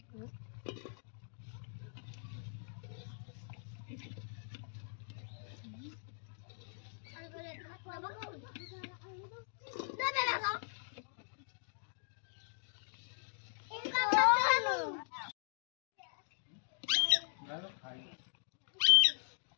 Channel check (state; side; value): silent; right; digital silence